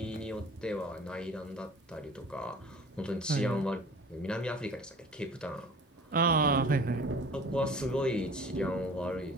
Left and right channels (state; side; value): normal; both; correlation 0.45